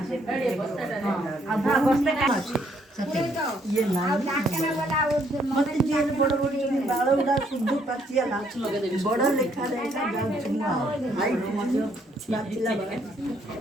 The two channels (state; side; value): normal; both; correlation 0.69